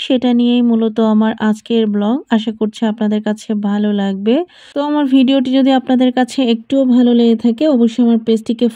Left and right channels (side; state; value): both; identical; correlation 1.00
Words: সেটা নিয়েই মূলত আমার আজকের ব্লগ। আশা করছি আপনাদের কাছে ভালো লাগবে। তো আমার ভিডিওটি যদি আপনাদের কাছে একটুও ভালো লেগে থাকে অবশ্যই আমার পেজটিকে